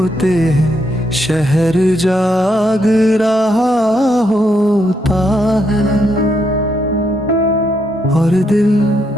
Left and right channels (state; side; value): normal; both; correlation 0.77